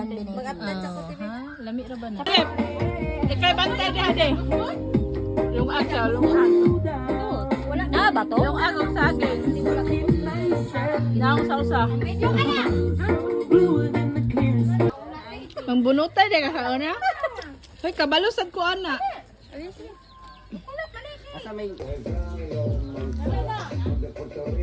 din. Lami ra ba na? Ikay bantay di ade. Yung agaw, yung agaw. Wala na ba to? Yung agaw sa akin. Naong sa usa. Mangbunutay di ka kauna? Hoy, kabalusad ko ana. Asa may...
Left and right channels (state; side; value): identical; both; correlation 1.00